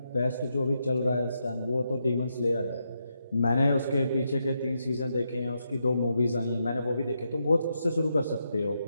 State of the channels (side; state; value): both; inverted; correlation -0.82